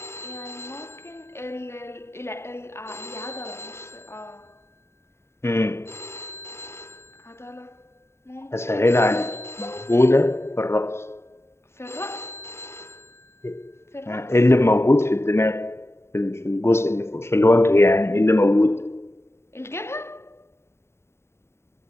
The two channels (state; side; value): late; right; 0.13 ms